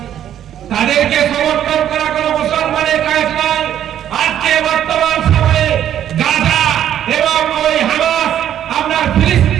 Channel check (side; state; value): left; quieter; 10.6 dB